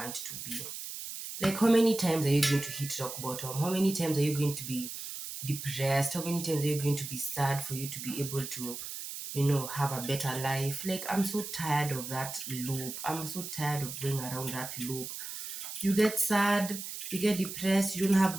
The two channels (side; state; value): right; noise; hiss, 8 dB below the sound